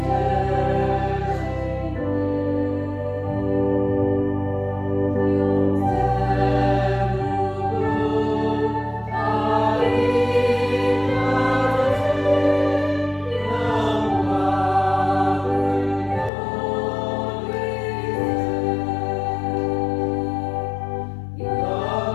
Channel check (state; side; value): drops out; right; at 16.3 s